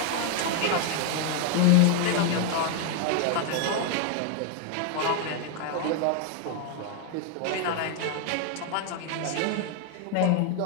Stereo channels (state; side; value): different; both; correlation 0.00